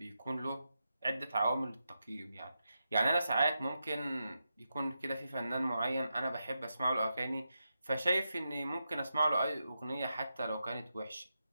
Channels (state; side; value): inverted; both; correlation -0.87